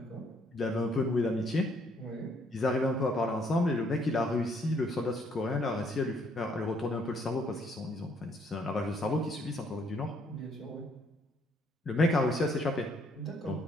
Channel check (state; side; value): normal; both; correlation 0.67